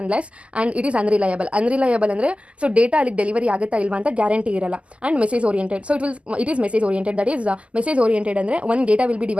and it is unreliable. Unreliable ಅಂದರೆ ಸೊ ಡೇಟಾ ಅಲ್ಲಿಗೆ ಡೆಲಿವರಿ ಆಗುತ್ತಾ ಇಲ್ವಾ ಅಂತ ಗ್ಯಾರಂಟಿ ಇರಲ್ಲ. And message oriented. So it is message oriented. That is message oriented ಅಂದರೆ ಒಂದು data will be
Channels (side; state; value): left; late; 0.059 ms